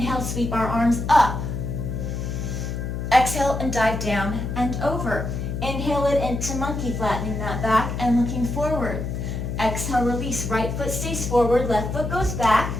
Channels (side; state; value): left; noise; hum, 4 dB below the sound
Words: sweep our arms up. Exhale and dive down and over. Inhale it into monkey, flattening that back and looking forward. Exhale, release. Right foot stays forward, left foot goes back.